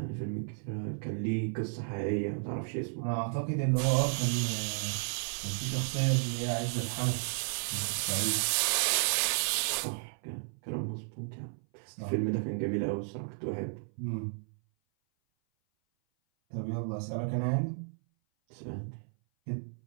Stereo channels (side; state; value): left; silent; 56 dB below the other